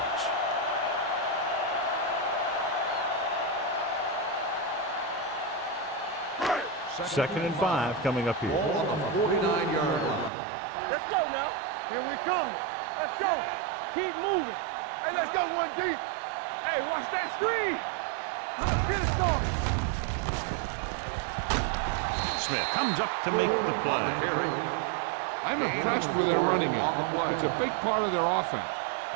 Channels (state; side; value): drops out; left; at 10.3 s